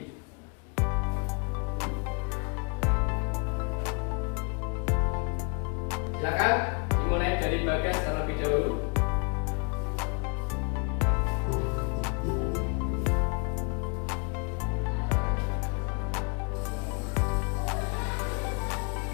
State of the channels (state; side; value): quieter; right; 35.9 dB